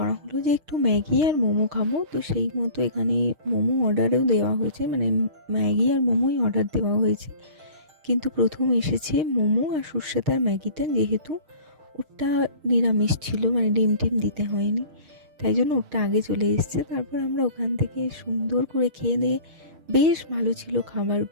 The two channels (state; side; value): late; left; 6.5 ms